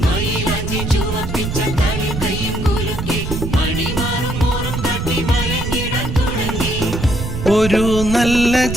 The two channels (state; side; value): noise; right; rumble, 5 dB below the sound